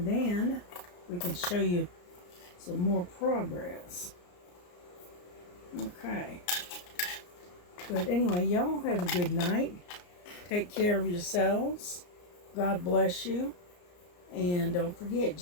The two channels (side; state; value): right; late; 34 ms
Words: we can show you some more progress. Okay. But anyway, y'all have a good night. Take care of yourselves. God bless you. And don't forget,